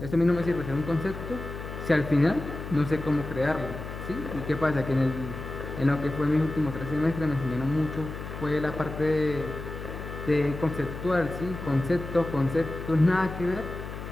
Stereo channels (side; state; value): left; noise; hum, 9 dB below the sound